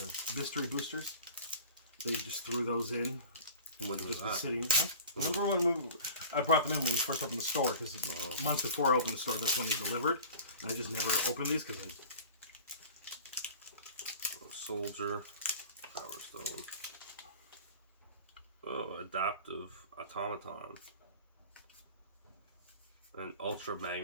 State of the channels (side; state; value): both; inverted; correlation -0.41